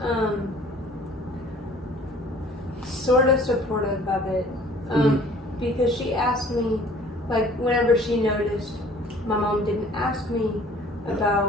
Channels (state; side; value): normal; both; correlation 0.52